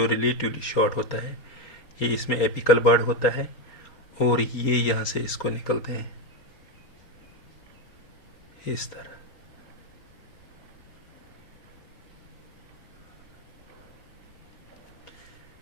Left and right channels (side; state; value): right; late; 4.5 ms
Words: रिलेटिवली शॉर्ट होता है। ये इसमें एपिकल बर्ड होता है और ये यहाँ से इसको निकलते हैं इस तरह।